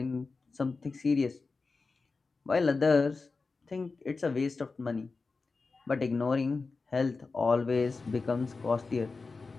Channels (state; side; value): quieter; right; 4.1 dB